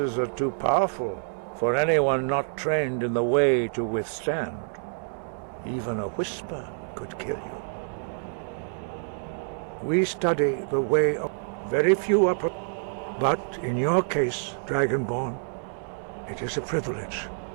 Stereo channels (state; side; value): silent; left; 60 dB below the other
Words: are too powerful for anyone not trained in the way to withstand. Even a whisper could kill you. We study the way of... Very few are... But in your case, Dragonborn, it is a privilege